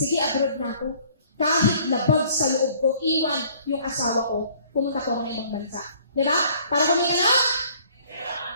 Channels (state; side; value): inverted; both; correlation -0.57